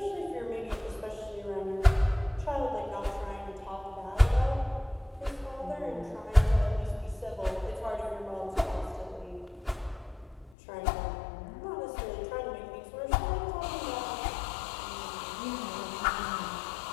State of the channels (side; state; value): right; drops out; at 10.6 s